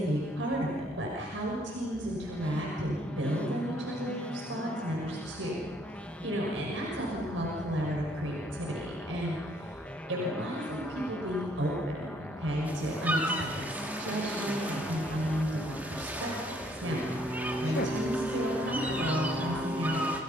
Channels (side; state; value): both; normal; correlation 0.65